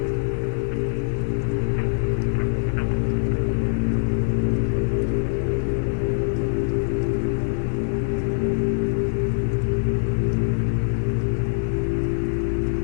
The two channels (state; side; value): silent; right; digital silence